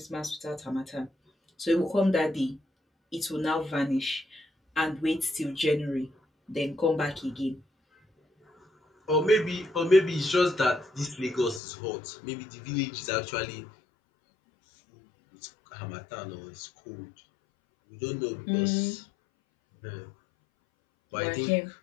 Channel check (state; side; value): drops out; right; at 11.6 s